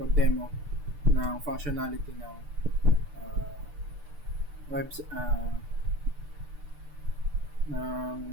ng functionality ng uh, web ng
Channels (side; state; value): left; late; 6.8 ms